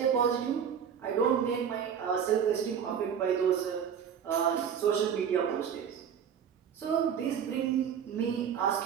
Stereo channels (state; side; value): quieter; left; 7.9 dB